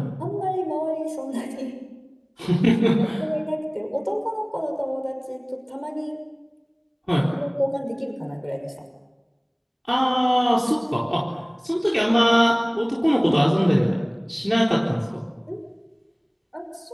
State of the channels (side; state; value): both; identical; correlation 1.00